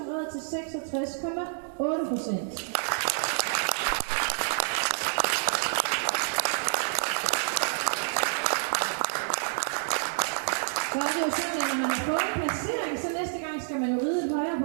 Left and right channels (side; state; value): left; silent; digital silence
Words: red til 66,8%. Så er det jo sådan, at når man har fået en placering, så næste gang skal man jo ride et højere